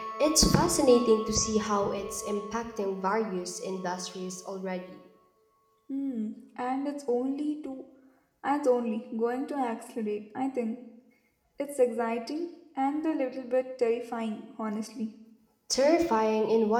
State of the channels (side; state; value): both; identical; correlation 1.00